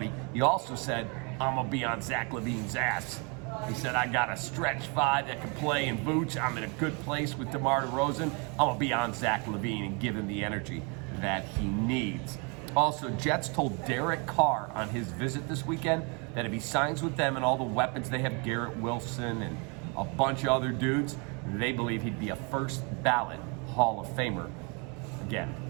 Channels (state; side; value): quieter; left; 33.3 dB